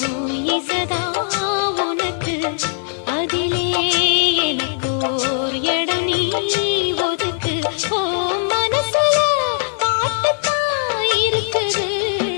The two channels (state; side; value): silent; right; 60 dB below the other